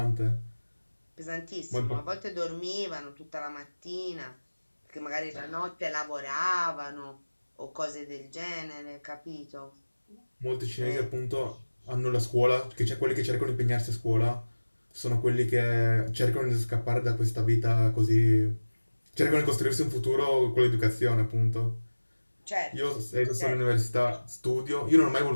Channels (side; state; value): both; inverted; correlation -1.00